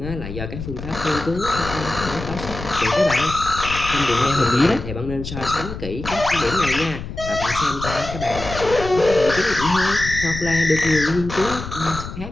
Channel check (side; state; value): left; noise; rumble, 9 dB below the sound